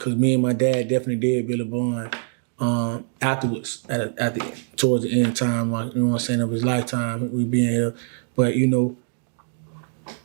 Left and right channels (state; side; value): silent; left; 61 dB below the other